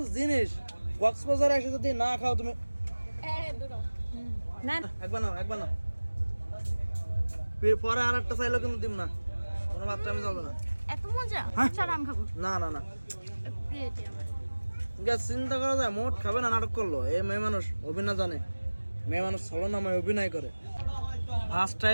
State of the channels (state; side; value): inverted; both; correlation -1.00